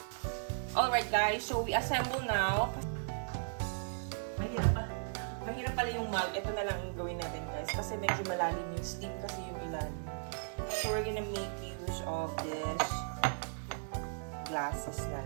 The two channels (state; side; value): silent; left; 54 dB below the other